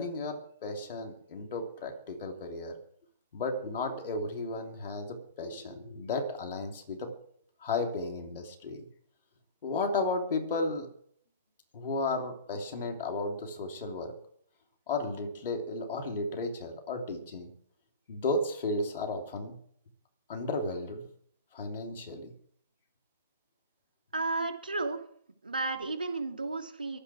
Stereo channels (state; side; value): inverted; both; correlation -0.37